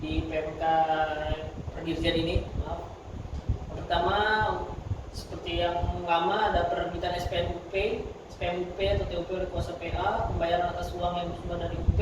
PMK Perdirjen ini. Maaf. Yang pertama seperti yang lama ada penerbitan SPMUP atau TUP oleh kuasa PA, pembayaran atas uang yang bersumber dari UP.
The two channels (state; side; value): identical; both; correlation 1.00